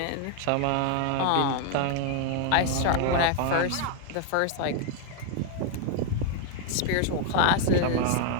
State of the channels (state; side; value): different; both; correlation 0.00